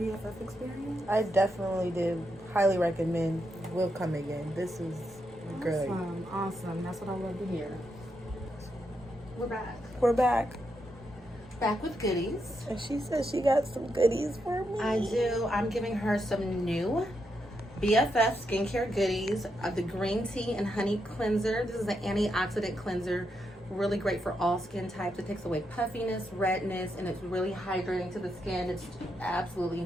experience? I definitely did. Highly recommend. We'll come again. This was great. Awesome. That's what I love to hear. We're back. We're back. Back with goodies. And she said she got some goodies for me. I do. I'm giving her some new BFF skincare goodies. The green tea and honey cleanser. This is an antioxidant cleanser. Really great for all skin types. It takes away puffiness, redness, and it's really hydrating to the skin. It's absolutely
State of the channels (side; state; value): both; normal; correlation 0.82